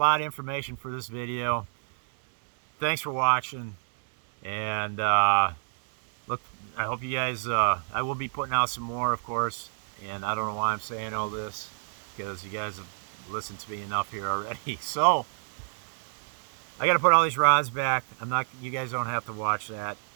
of information for this video. Thanks for watching. And look, I hope you guys, I will be putting out some more, of course, and I don't know why I'm saying all this, because you guys have listened to me enough here already. So I got to put all these rods back. You guys don't have to watch that.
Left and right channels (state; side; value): silent; left; digital silence